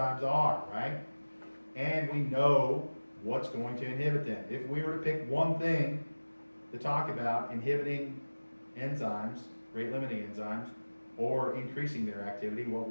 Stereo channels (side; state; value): both; inverted; correlation -1.00